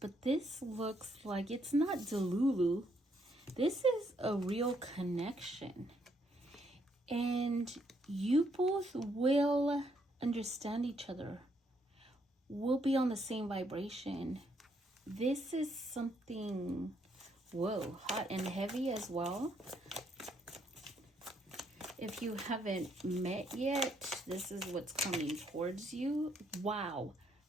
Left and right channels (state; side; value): normal; both; correlation 0.73